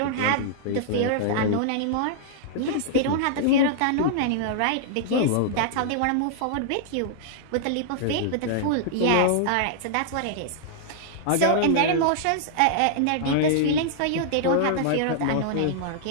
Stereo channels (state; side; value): different; both; correlation -0.01